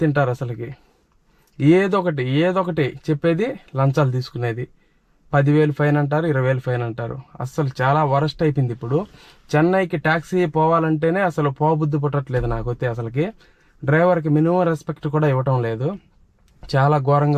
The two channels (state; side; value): identical; both; correlation 1.00